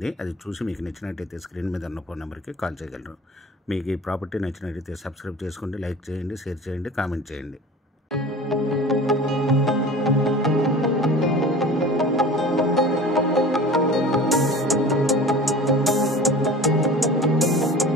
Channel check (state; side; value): normal; both; correlation 0.39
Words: అది చూసి మీకు నచ్చినట్టయితే స్క్రీన్ మీద ఉన్న ఫోన్ నెంబర్కి కాల్ చేయగలరు. మీకు ఈ ప్రాపర్టీ నచ్చినట్టయితే సబ్స్క్రైబ్ చేసుకోండి, లైక్ చేయండి, షేర్ చేయండి, కామెంట్ చేయండి.